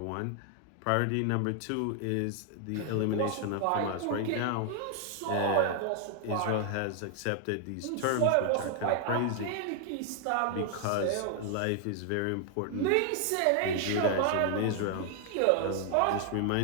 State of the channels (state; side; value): different; both; correlation 0.00